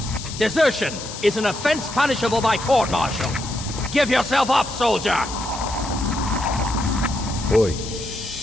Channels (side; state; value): left; noise; hiss, 10 dB below the sound